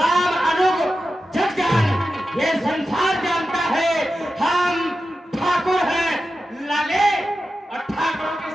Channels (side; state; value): both; normal; correlation 0.92